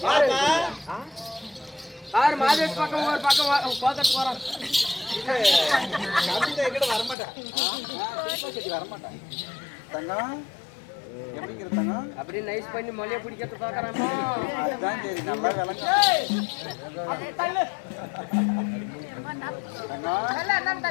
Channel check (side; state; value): right; drops out; at 7.2 s